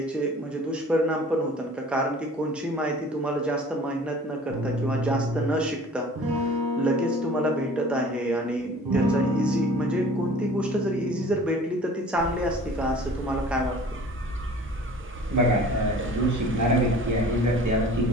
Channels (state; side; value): normal; both; correlation 0.46